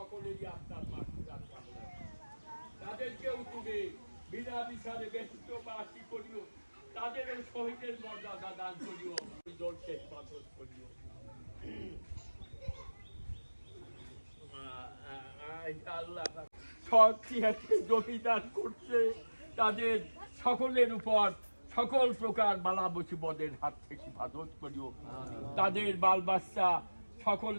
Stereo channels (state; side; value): inverted; both; correlation -1.00